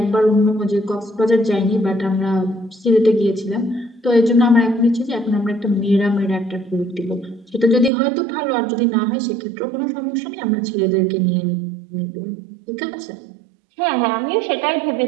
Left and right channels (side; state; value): left; drops out; at 7.9 s